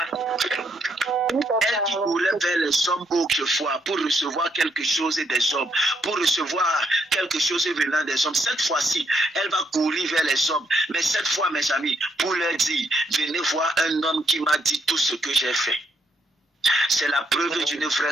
Elle qui courait vers les hommes autrefois pour recevoir quelque chose des hommes, pour recevoir quelque chose venant des hommes. Cette fois-ci, elle va courir vers les hommes. Mais cette fois, mes amis, pour leur dire, venez voir un homme qui m'a dit tout ce que j'ai fait. C'est la preuve d'une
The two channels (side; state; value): both; normal; correlation 0.76